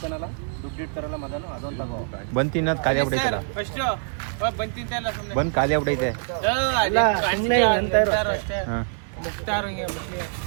ದುಡ್ಡು ಇಡ್ತಾರಲ್ಲ ಮದನು, ಅದೊಂದು ತಗೋ. ಬಂದ್ ತಿನ್ನೋದು ಖಾಲಿ ಆಗ್ಬಿಟ್ಟೈತಲ್ಲ. ಬಂದ್ ಖಾಲಿ ಆಗ್ಬಿಟ್ಟೈತೆ.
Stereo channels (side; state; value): left; silent; 58 dB below the other